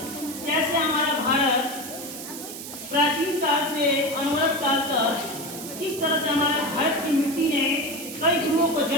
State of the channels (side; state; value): right; noise; hiss, 10 dB below the sound